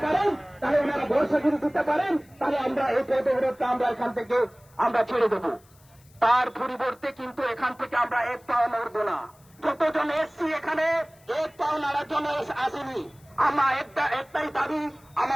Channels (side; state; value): left; noise; hiss, 30 dB below the sound